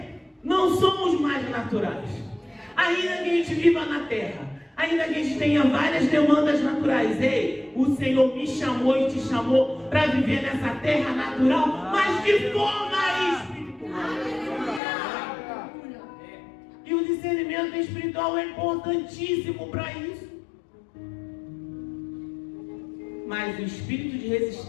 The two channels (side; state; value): right; drops out; at 14.8 s